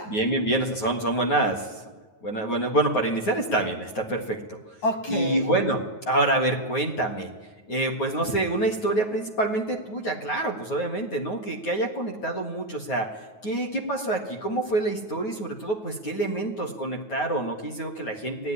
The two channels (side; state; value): right; late; 9.3 ms